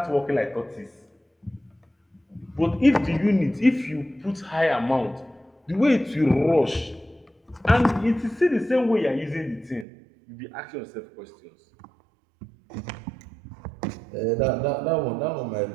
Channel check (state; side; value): drops out; left; at 9.9 s